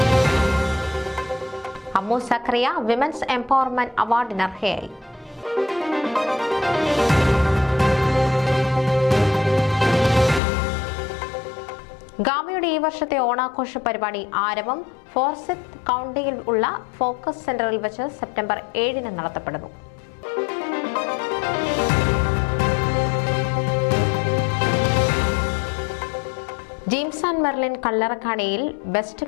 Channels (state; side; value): drops out; right; at 10.4 s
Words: അമ്മു സക്കറിയ വിമൻസ് എംപവർമെന്റ് അവാർഡിന് അർഹയായി. ഗാമയുടെ ഈ വർഷത്തെ ഓണാഘോഷ പരിപാടി ആരവം ഫോർസിത്ത് കൗണ്ടിയിൽ ഉള്ള ഫോക്കസ് സെന്ററിൽ വെച്ച് സെപ്റ്റംബർ 7 നടത്തപ്പെടുന്നു. ജെയിംസ് ആൻഡ് മെർലിൻ കല്ലറക്കാണിയിൽ